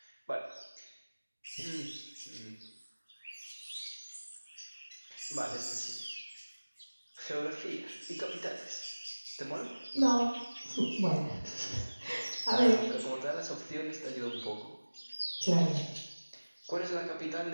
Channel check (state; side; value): inverted; both; correlation -1.00